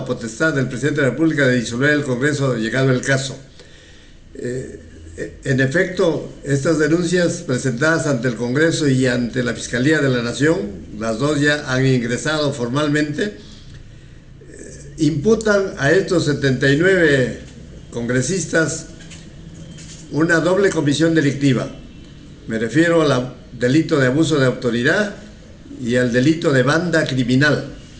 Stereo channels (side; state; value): both; identical; correlation 1.00